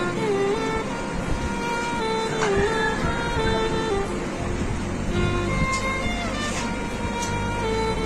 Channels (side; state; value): both; identical; correlation 1.00